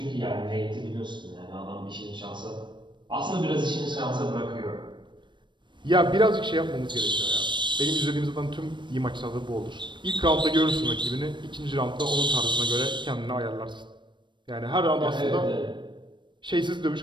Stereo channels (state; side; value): late; left; 0.22 ms